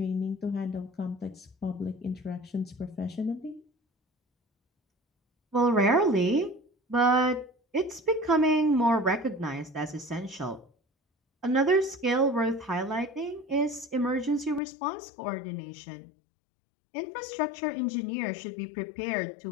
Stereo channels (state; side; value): drops out; right; at 14.6 s